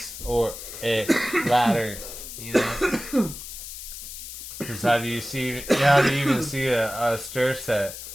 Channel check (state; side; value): noise; left; hiss, 11 dB below the sound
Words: or a ladder, you know. Because how do you even see a stair set?